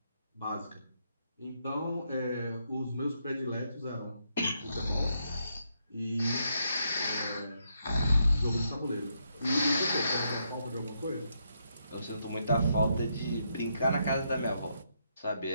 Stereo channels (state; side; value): inverted; both; correlation -0.78